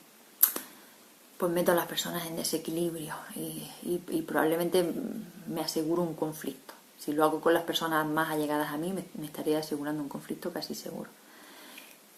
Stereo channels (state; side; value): identical; both; correlation 1.00